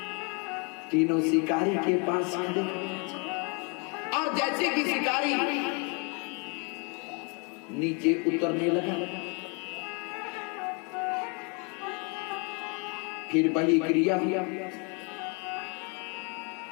तीनों शिकारी के पास खड़े और जैसे कि शिकारी नीचे उतरने लगा, फिर वही क्रिया हुआ।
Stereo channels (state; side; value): quieter; right; 33.8 dB